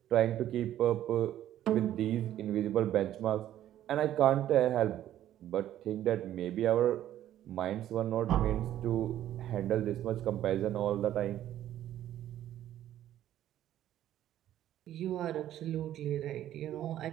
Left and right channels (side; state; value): left; quieter; 12.2 dB